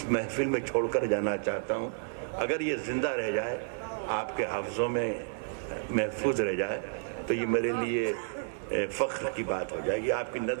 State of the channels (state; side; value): silent; left; digital silence